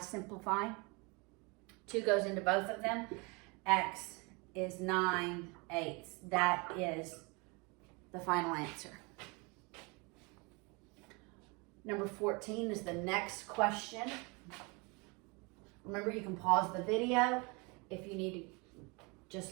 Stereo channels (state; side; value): quieter; left; 29.1 dB